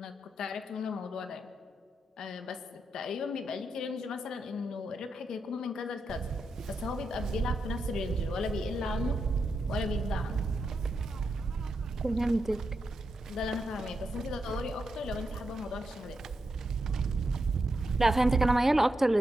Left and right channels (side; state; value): both; normal; correlation 0.85